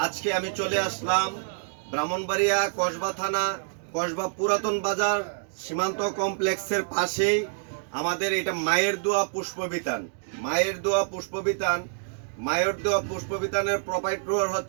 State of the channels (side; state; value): left; silent; digital silence